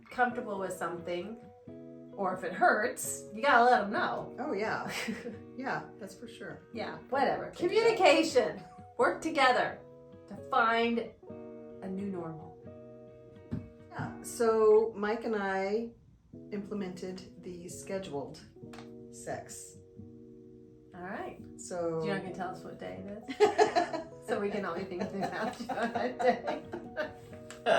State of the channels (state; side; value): identical; both; correlation 1.00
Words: comfortable with something, or if it hurts, you gotta let them know. Oh yeah. Yeah, that's for sure. Yeah, whatever. Communication. Work together to find a new normal. Yeah. So Mike and I implemented the scheduled sex. All right. So You're not gonna tell us what day it is, so we can all be thinking about you on that day,